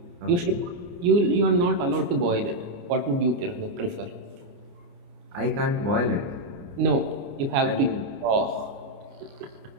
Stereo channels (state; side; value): late; left; 29 ms